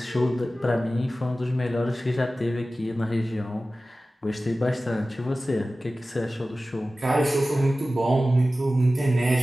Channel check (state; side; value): normal; both; correlation 0.96